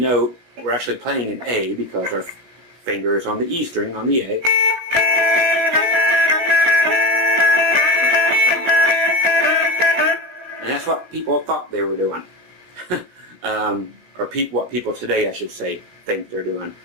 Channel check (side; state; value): left; late; 16 ms